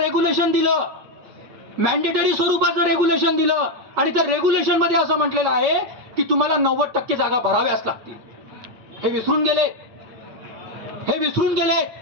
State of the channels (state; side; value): late; left; 8.8 ms